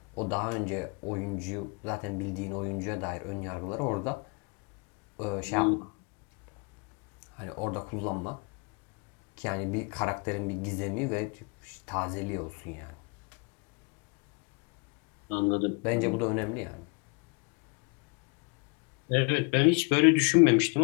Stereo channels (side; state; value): right; quieter; 32.4 dB